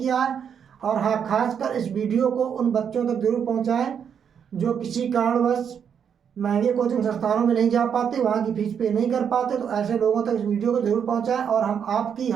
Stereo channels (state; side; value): quieter; left; 7.7 dB